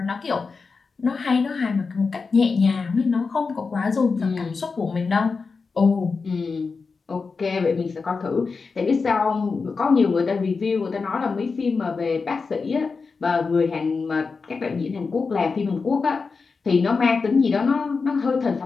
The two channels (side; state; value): right; quieter; 4.7 dB